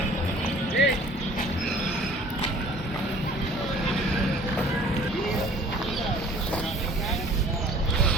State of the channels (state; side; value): normal; both; correlation 0.51